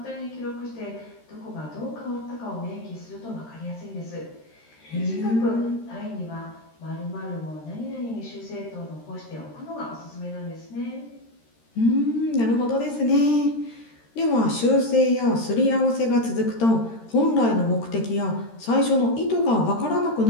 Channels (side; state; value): right; late; 13 ms